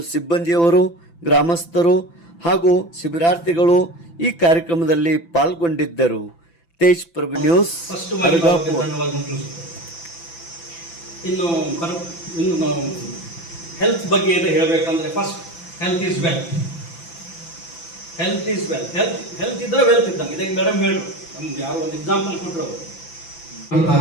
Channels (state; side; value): late; right; 5.9 ms